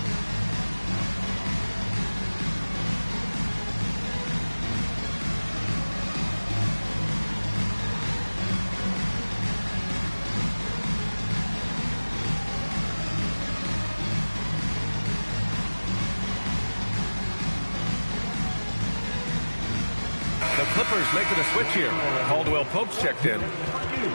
Clippers making a switch here. Caldwell Pope's checked in.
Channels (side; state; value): both; inverted; correlation -1.00